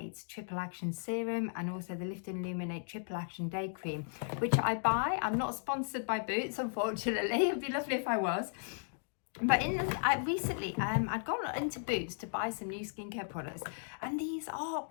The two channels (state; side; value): silent; right; digital silence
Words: Triple Action Serum and also the Lift and Illuminate Triple Action Day Cream, which I buy. I'm not sponsored by Boots, unfortunately. It'd be lovely if I was. But recently, I'd gone into Boots to buy some new skincare products, and these are